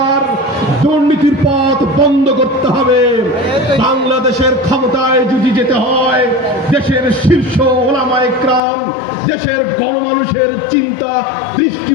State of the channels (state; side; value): drops out; right; at 8.6 s